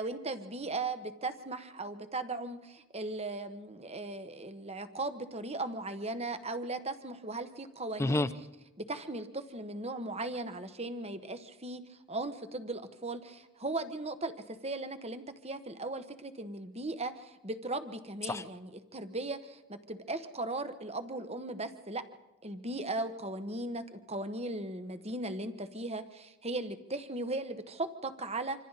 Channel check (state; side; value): normal; both; correlation 0.28